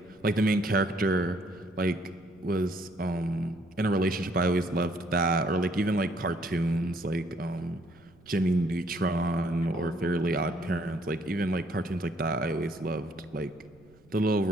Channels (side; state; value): right; noise; rumble, 28 dB below the sound